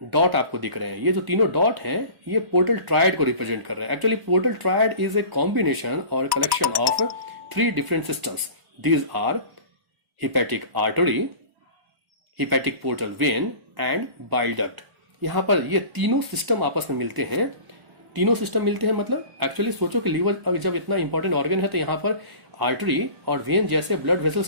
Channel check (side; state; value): left; late; 1.0 ms